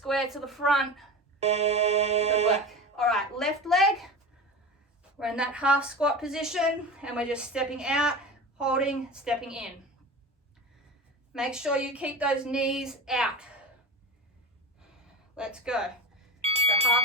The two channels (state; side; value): normal; both; correlation 0.28